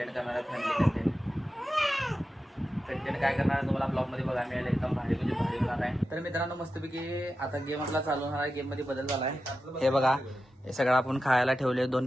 करणार आहे, फॅमिली कंटेंट काय करणार आहे तुम्हाला ब्लॉगमध्ये बघायला मिळेल. एकदम भारी म्हणजे भारी होणार आहे. तर मित्रांनो मस्तपैकी आता गेम आपला चालू होणार आहे. गेममध्ये बदल झाला आहे. हे बघा, हे सगळं आपण खायला ठेवले. 2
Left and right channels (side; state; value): both; normal; correlation 0.91